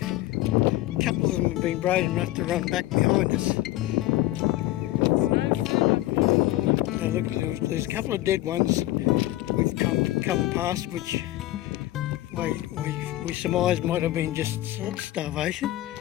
couple of them have been brave enough to run back behind us. Now look, there's a couple of dead ones we've come past, which we surmise might have been just starvation.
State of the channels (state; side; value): quieter; right; 16.3 dB